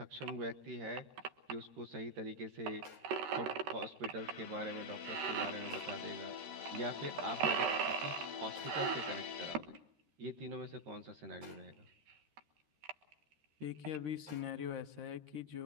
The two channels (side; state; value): left; late; 13 ms